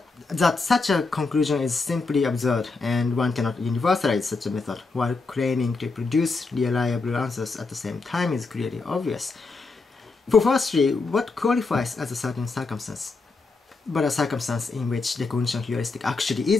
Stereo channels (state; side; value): quieter; right; 4.0 dB